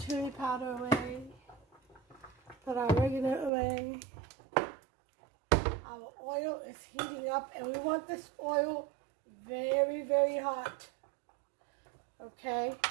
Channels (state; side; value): drops out; left; at 3.5 s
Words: powder away. Put our oregano away. Our oil is heating up, and we want this oil very, very hot. Okay,